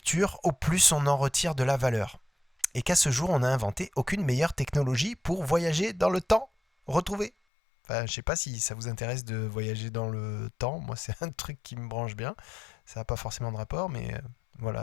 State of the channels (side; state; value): right; drops out; at 7.3 s